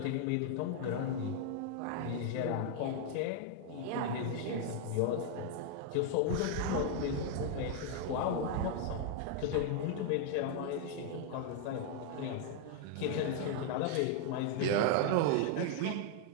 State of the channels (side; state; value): both; different; correlation 0.00